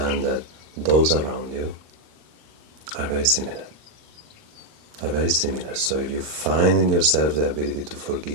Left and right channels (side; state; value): left; late; 39 ms